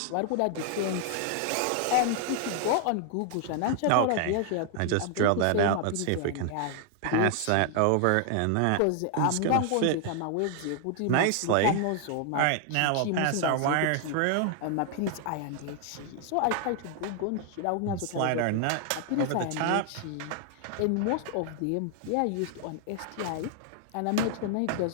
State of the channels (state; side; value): different; both; correlation 0.00